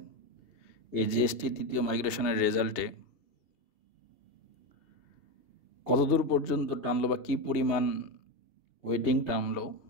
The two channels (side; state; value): right; late; 2.7 ms